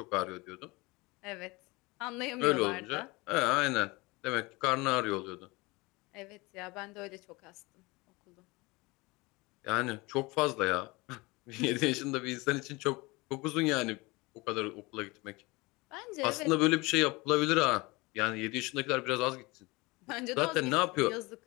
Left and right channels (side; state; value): right; quieter; 24.1 dB